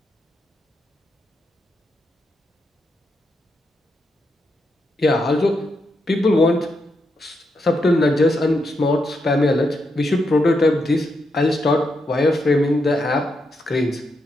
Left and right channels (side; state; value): both; normal; correlation 0.82